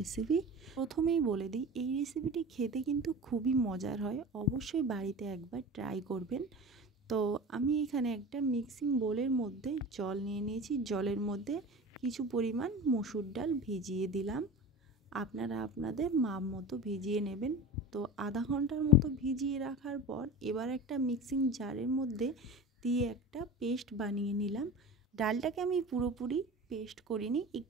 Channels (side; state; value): both; normal; correlation 0.33